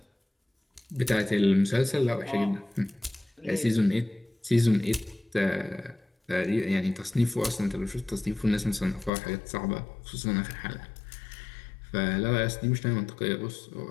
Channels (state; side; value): drops out; right; at 9.1 s